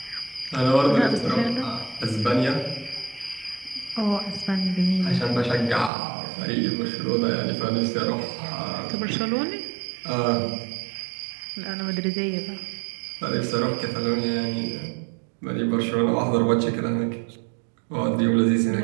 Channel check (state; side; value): drops out; left; at 5.9 s